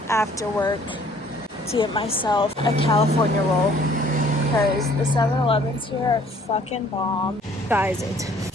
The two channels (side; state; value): both; normal; correlation 0.58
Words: after work to get myself a California roll because the 7-Elevens here are fucking bomb. Guys, it's